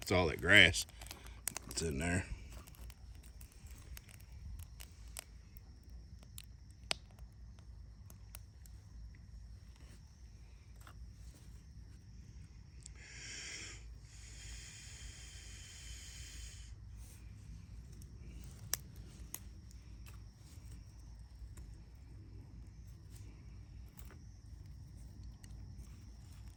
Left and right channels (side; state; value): both; identical; correlation 1.00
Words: It's all that grass that's in there.